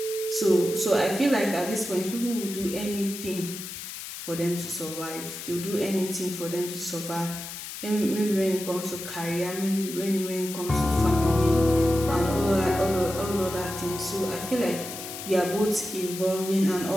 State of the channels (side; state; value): left; noise; hiss, 9 dB below the sound